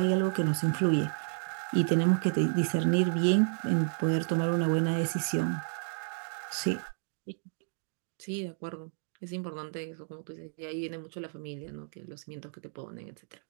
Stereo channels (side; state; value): left; silent; digital silence